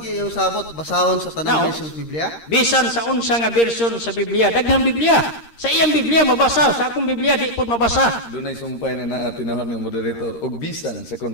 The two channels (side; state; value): right; late; 13 ms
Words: yung sabot basahon sa tanang Now, version sa Biblia? Bisan sa unsa nga version sa Biblia, daghang Biblia. Sa iyang Biblia mabasa, sa akong Biblia di pud mabasa. Doon ay sumpay na tinahon ng moderator og bisan sa